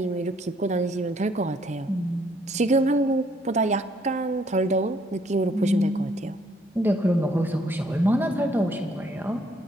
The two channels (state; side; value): normal; both; correlation 0.66